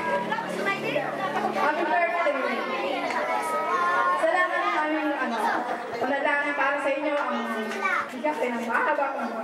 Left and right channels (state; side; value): identical; both; correlation 1.00